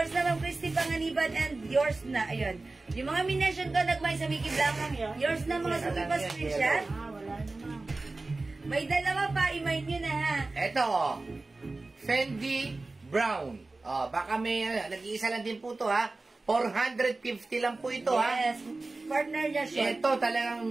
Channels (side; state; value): left; quieter; 3.3 dB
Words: na, Ma'am Christy Panganiban. And yours na, ayun. Yung mga mination ko, nagmay sa Mickey Black. Yours na, mga suki pa screenshot. Wala naman. May dalawa pa, i-mind nyo na ha. Eto, oh. Fendi Brown. Oh, baka may, nag-iisa lang din po to, ha? 450 lang po ito, ha? Yes, partner niya short. Ito, talagang